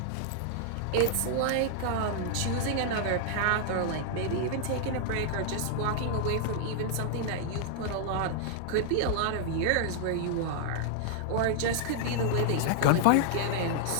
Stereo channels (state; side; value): different; both; correlation -0.01